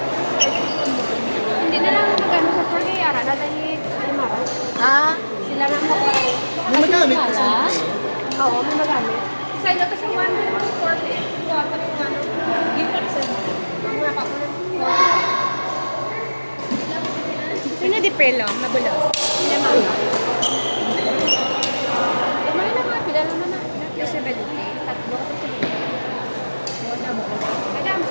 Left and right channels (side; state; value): both; inverted; correlation -1.00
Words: Dala ni Mara. Ah, Sila lang ako. May magamit Wala. kasi. Oo, may magamit. Sa ilo to siya 140. Kuha pa rin yung ano. Give pa rin sa mga kapunan. sino di pelo? Magulo. Sila Mara. Lumay na nga, pila naman na. Yung 70. Tatlo ko sa wala mo. Kaya,